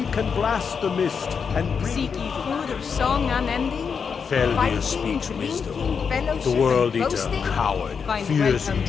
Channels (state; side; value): quieter; right; 6.2 dB